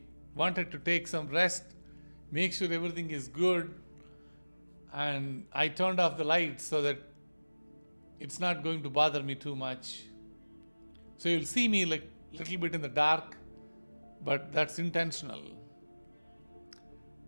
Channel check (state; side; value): inverted; both; correlation -1.00